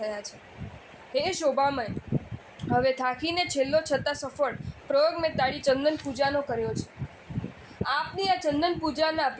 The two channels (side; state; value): both; identical; correlation 1.00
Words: છે. હે શોભામય, હવે થાકીને છેલ્લો છતાં સફળ પ્રયોગ મેં તારી ચંદન પૂજાનો કર્યો છે. આપની આ ચંદન પૂજાના